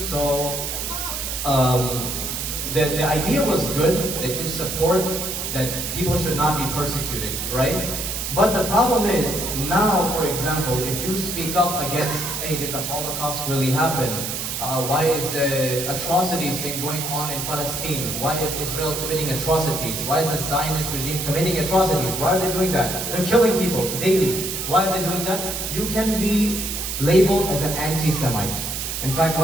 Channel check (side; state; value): right; noise; hiss, 4 dB below the sound